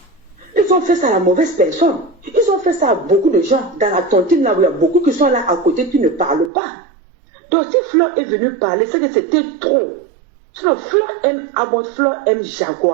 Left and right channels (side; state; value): left; drops out; at 6.5 s